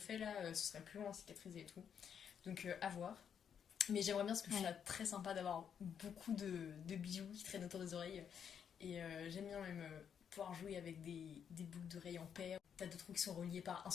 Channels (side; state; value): right; quieter; 7.9 dB